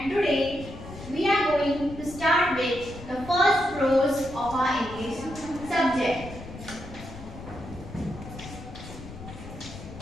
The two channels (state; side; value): noise; left; rumble, 13 dB below the sound